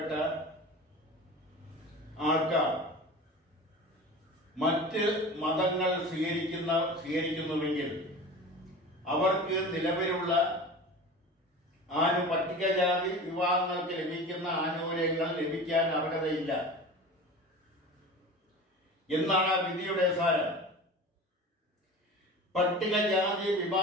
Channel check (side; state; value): both; normal; correlation 0.35